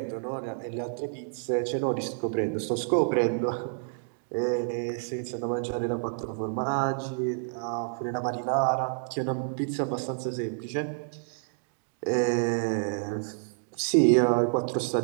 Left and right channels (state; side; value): silent; left; digital silence